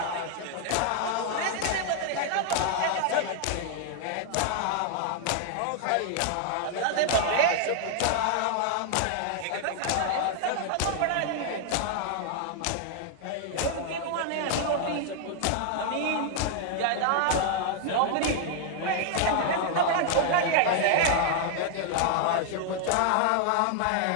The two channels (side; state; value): both; different; correlation 0.00